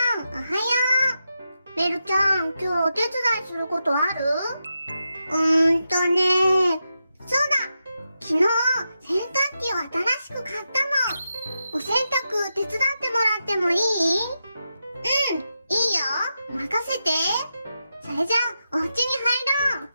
マン、おはよう。ベルちゃん、今日お手伝いすることある？そうだ。昨日、洗濯機を新しく買ったの。お洗濯手伝ってもらってもいい？いいよ。任せて。それじゃあ、お家に入ろう。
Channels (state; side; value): inverted; both; correlation -0.87